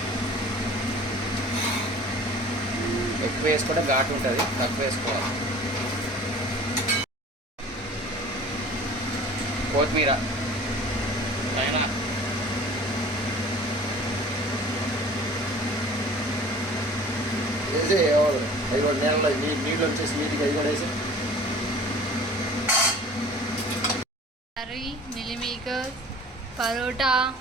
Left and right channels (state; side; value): normal; both; correlation 0.45